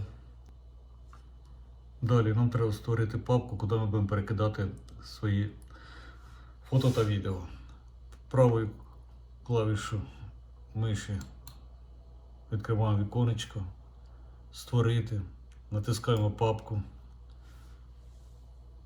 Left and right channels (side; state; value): both; identical; correlation 1.00